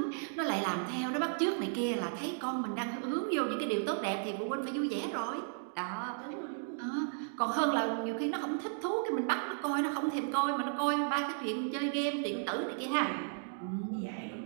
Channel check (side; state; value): left; silent; digital silence